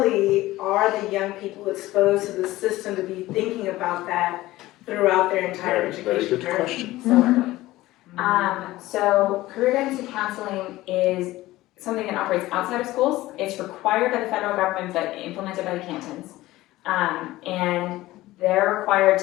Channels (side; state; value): right; quieter; 17.3 dB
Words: are the young people exposed to the system to be thinking about that throughout their entire very education good journey? question. So early. So career guidance and counseling is something that operates outside of schools. It's required by the federal government but implemented by the cantons. And they're required